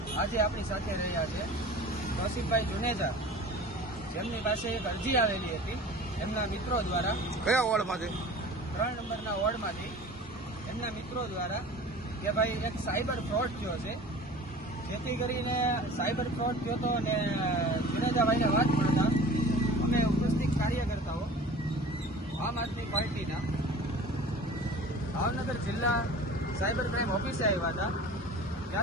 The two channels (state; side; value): normal; both; correlation 0.41